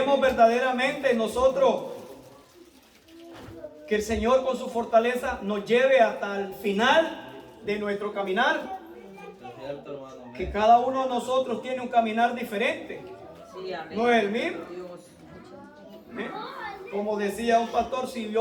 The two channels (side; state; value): both; identical; correlation 1.00